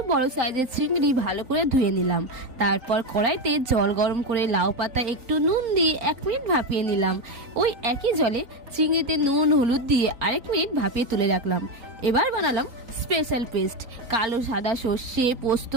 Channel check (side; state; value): left; late; 3.9 ms